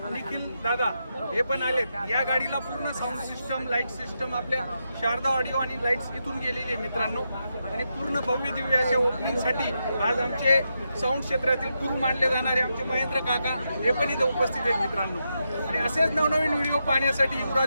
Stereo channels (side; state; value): both; inverted; correlation -0.85